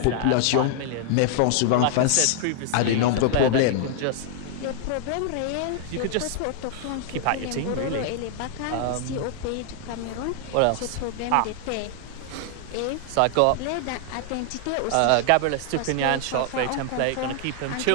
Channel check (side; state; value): both; different; correlation 0.00